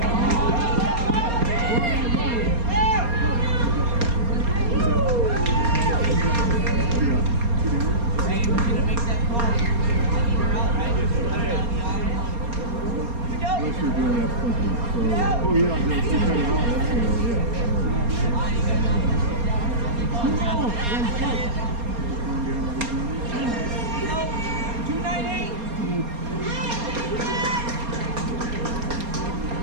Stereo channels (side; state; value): left; late; 4.3 ms